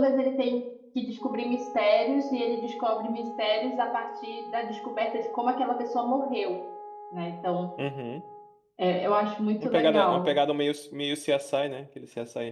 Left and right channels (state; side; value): identical; both; correlation 1.00